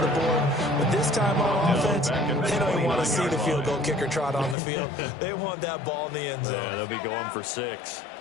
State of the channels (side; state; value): right; drops out; at 4.5 s